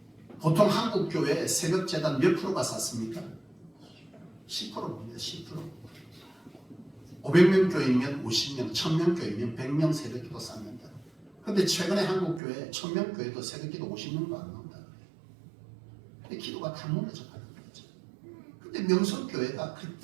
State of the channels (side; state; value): left; drops out; at 12.4 s